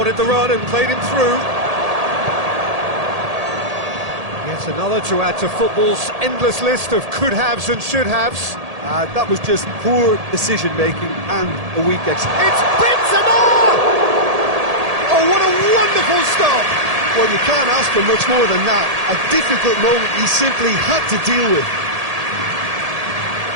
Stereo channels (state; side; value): late; left; 1.8 ms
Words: the run and played him through. Yet another to add to football's endless list of could-haves and should-haves. That was just poor decision-making and a weak execution. It's Benzema! Oh, what a wonderful stop! Well, you can't ask for much more than that. A difficult moment he simply had to deal with.